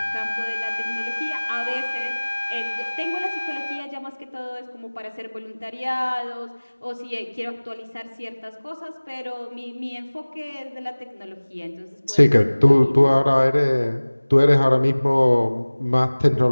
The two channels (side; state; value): both; inverted; correlation -1.00